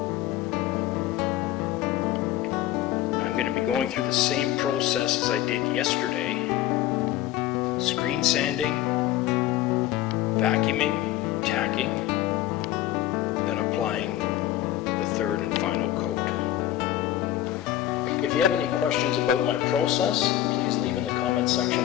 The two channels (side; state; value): right; quieter; 13.4 dB